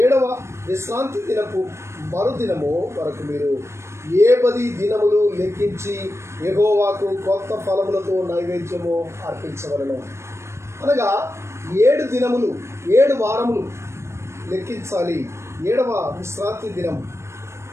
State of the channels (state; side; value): late; left; 0.13 ms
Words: 7వ విశ్రాంతి దినపు మరుదినము వరకు మీరు 10 దినములు లెక్కించి యెహోవాకు కొత్త ఫలములతో నైవేద్యము అర్పించవలను. అనగా 7 దినములు, 7 వారములు లెక్కించాలి. 7వ విశ్రాంతి దినం